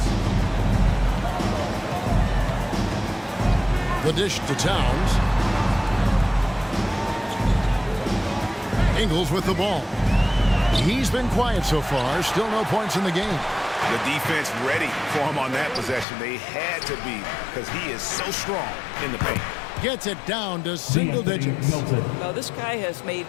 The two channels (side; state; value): right; drops out; at 16.1 s